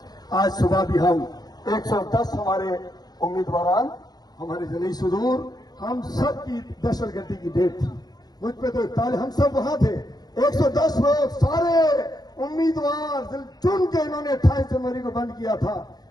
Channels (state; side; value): late; right; 0.19 ms